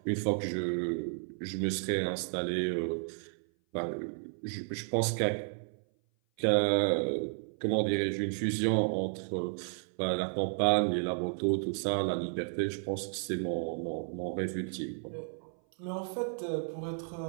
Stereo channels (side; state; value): left; silent; 56 dB below the other